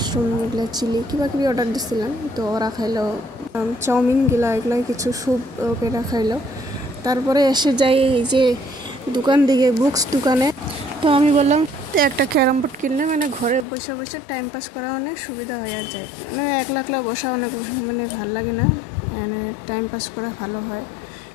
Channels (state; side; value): drops out; right; at 13.7 s